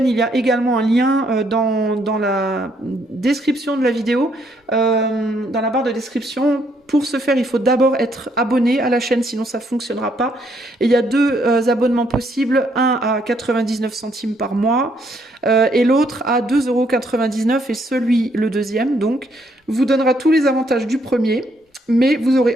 il y a également un lien dans la description de la vidéo, dans la barre de description. Pour ce faire, il faut d'abord être abonné à la chaîne, sinon ça ne fonctionnera pas. Et il y a deux abonnements possibles, un à 99 centimes par mois et l'autre à 2,99 € et celui, le deuxième, donc, vous donnera tous les avantages du premier. Mais vous aurez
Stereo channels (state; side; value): normal; both; correlation 0.71